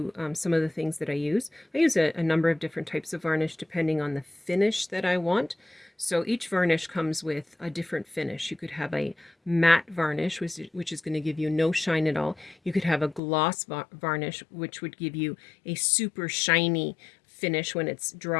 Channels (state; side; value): drops out; right; at 13.2 s